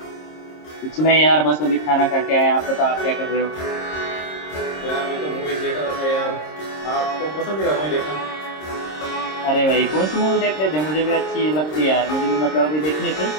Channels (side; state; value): right; late; 26 ms